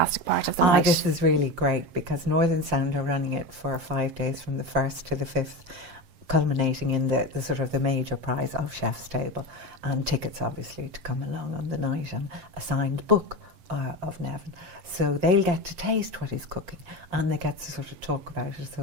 part of the night. This is really great, because Northern Sound are running it for 5 days from the 1st to the 5th, culminating in the sort of the major prize of Chef's Table, and tickets obviously to come along on the night, and a signed book of Nevin. So they'll get to taste what he's cooking, and they get to sort of talk about it,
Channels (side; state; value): left; late; 7.5 ms